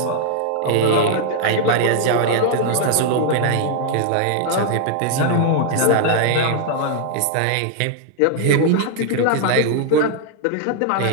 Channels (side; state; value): both; different; correlation 0.00